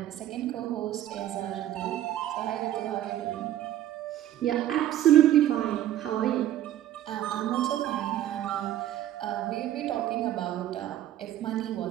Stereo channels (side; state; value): left; quieter; 12.5 dB